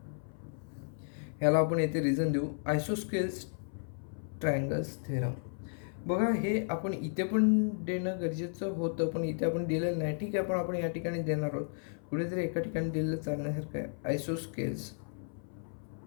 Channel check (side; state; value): right; silent; 55 dB below the other